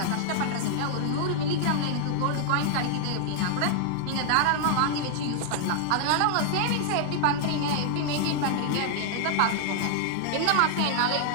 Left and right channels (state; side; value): different; both; correlation 0.00